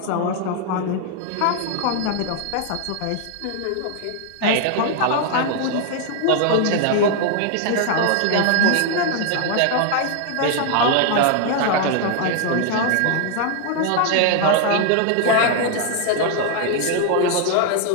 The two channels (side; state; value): both; different; correlation 0.00